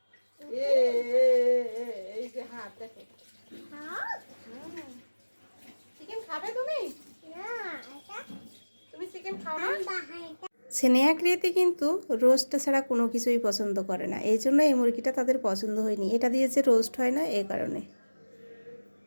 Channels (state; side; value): inverted; both; correlation -1.00